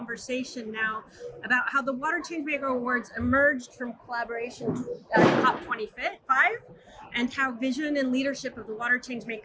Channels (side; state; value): both; identical; correlation 1.00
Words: now about how the Water Changemaker Awards emerged from collaboration at COP25 and how vision and leadership of the Water